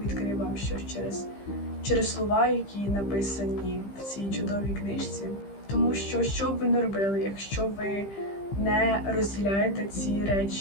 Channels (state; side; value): late; right; 15 ms